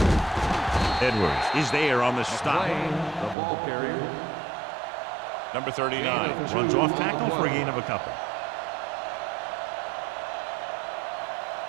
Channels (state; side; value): drops out; left; at 3.4 s